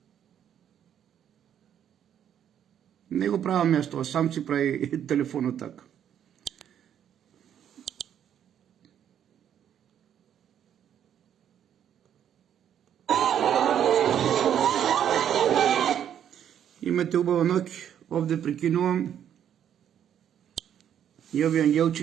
не го правам јас тоа, сам си прави телефонот така. Имате убава ноќ, овде прекинувам. И овие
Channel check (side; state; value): left; quieter; 9.6 dB